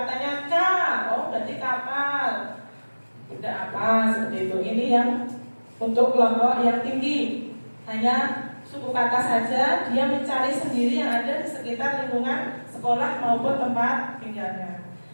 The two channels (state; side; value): inverted; both; correlation -1.00